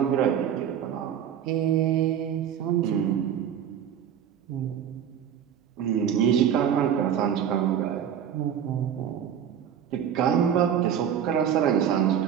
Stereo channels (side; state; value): left; quieter; 9.1 dB